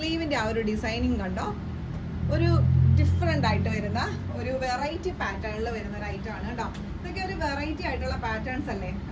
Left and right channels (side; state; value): both; identical; correlation 1.00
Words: ആ ഒരു ഡിസൈനിങ് കണ്ടോ, ഒരു ഡിഫറെന്റ് ആയിട്ട് വരുന്ന ഒരു വെറൈറ്റി പാറ്റേണിൽ വരുന്ന ഒരു ഐറ്റം ആണ് കേട്ടോ. ഇതൊക്കെ ഒരു വെറൈറ്റി ആയിട്ടുള്ള പാറ്റേൺസ് അല്ലേ